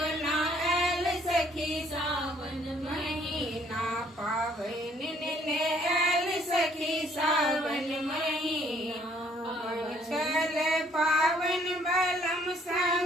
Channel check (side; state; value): both; normal; correlation 0.63